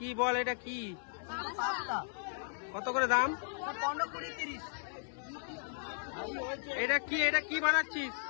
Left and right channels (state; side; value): silent; right; 54 dB below the other